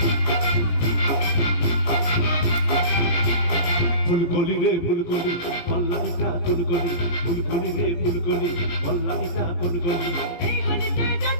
ফুলকলি রে ফুলকলি, পল্লানিটা ফুলকলি, ফুলকলি রে ফুলকলি, পল্লানিটা ফুলকলি। এই গলিতে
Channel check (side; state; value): right; late; 17 ms